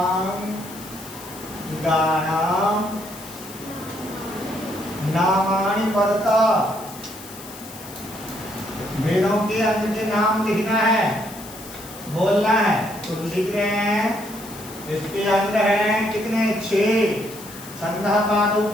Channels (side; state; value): left; noise; hiss, 16 dB below the sound